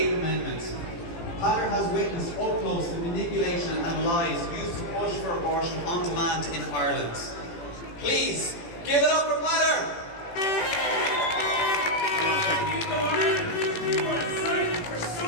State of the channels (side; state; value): right; late; 18 ms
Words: Amendment. Pater has witnessed up close the manipulation and lies used to push for abortion on demand in Ireland. Please, give it up for Pater!